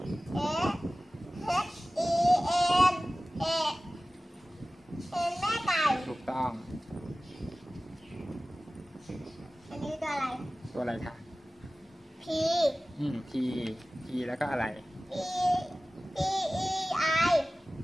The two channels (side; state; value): both; normal; correlation 0.97